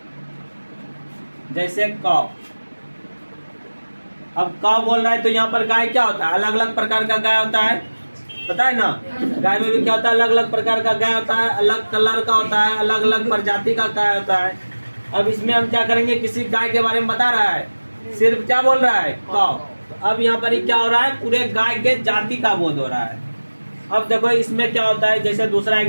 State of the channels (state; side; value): inverted; both; correlation -1.00